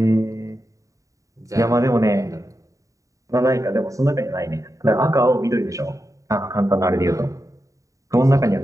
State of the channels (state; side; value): late; left; 0.16 ms